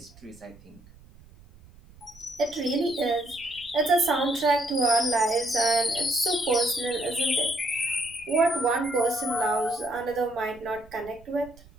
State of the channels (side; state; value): right; noise; rumble, 24 dB below the sound